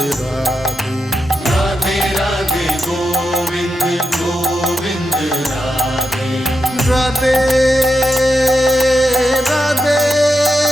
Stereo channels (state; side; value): normal; both; correlation 0.87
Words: राधे राधे राधे गोविंद गोविंद राधे राधे राधे